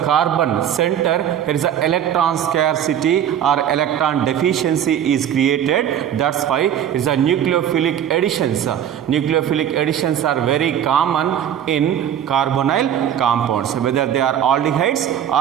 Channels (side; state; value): left; quieter; 9.8 dB